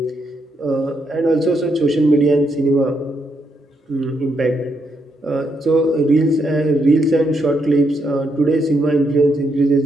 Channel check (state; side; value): normal; both; correlation 0.78